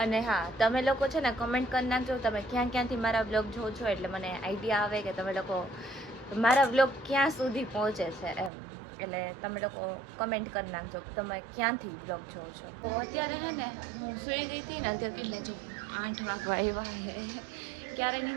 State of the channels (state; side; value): drops out; left; at 8.5 s